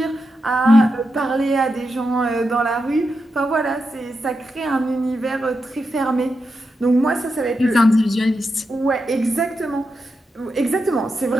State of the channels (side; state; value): both; normal; correlation 0.87